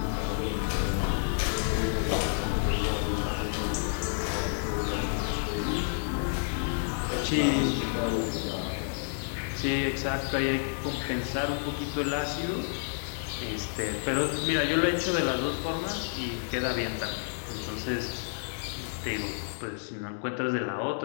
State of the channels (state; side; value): silent; right; digital silence